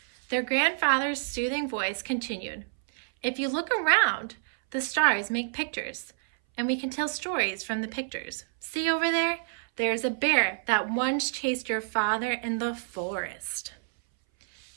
Their grandfather's soothing voice continued, "If you look around, the stars make pictures, and we can tell stories from the pictures. See over there? There is a bear that once chased your father in the forest.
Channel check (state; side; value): silent; left; 59 dB below the other